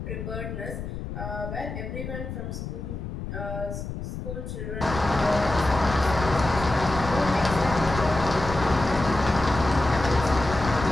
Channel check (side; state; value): left; noise; rumble, 7 dB below the sound